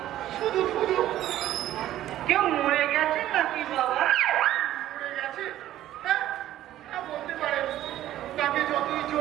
শুধু শুধু কেউ মরে গেছে নাকি বাবা? পড়ে গেছে। হ্যাঁ হ্যাঁ, বলতে পারেন। তাকে যতই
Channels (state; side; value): quieter; left; 13.3 dB